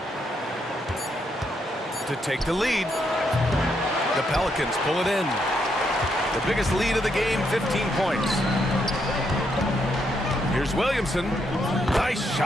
To take the lead. The Pelicans pull it in. The biggest lead of the game, 15 points. Here's Williamson. Nice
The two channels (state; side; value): normal; both; correlation 0.77